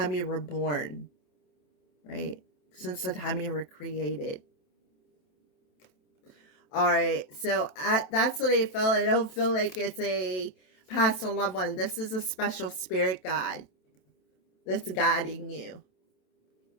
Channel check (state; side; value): late; right; 27 ms